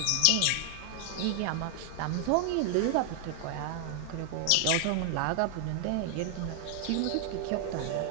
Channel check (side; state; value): both; different; correlation 0.00